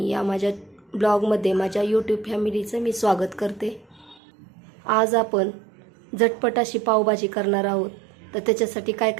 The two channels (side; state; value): left; drops out; at 4.2 s